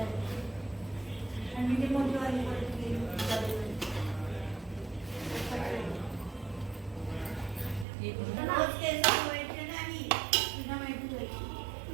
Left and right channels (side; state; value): left; drops out; at 7.9 s